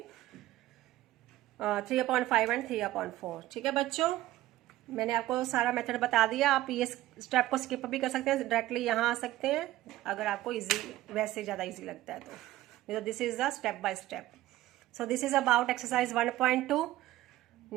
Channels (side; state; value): left; quieter; 15.7 dB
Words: 3/5 and 3/4। ठीक है बच्चों, मैंने आपको सारा मेथड बता दिया। आप ये स्टेप को स्किप भी कर सकते हैं, डायरेक्टली यहाँ आ सकते हैं अगर आपको इजी, वैसे ज़्यादा इजी लगता है तो this is the step by step. So this is about exercise 1.2।